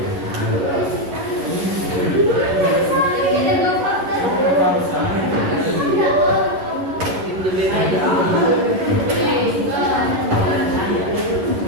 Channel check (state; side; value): late; left; 11 ms